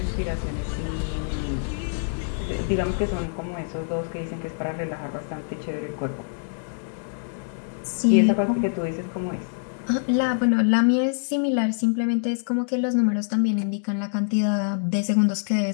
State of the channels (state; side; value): silent; right; digital silence